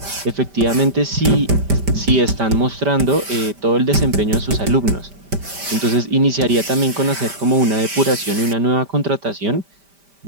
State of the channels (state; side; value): late; left; 5.1 ms